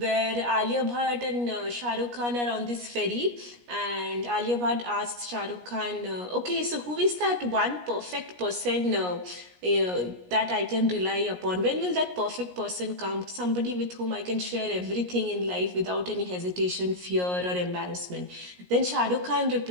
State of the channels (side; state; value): left; late; 17 ms